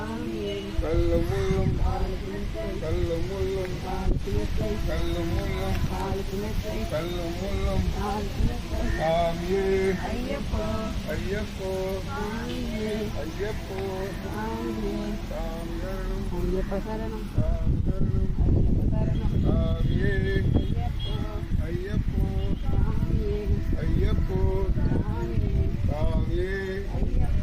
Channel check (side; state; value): both; identical; correlation 1.00